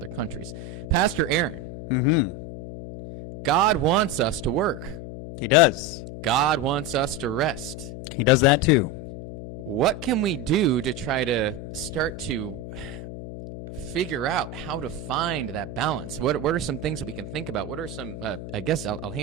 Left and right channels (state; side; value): noise; left; hum, 9 dB below the sound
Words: countries. Pastor Aaron, God wants us to work. He does. God wants us to rest. He does that too. What can we do to try to start to figure out how to find that balance? What are some things that we can think about? What are some, I guess I'll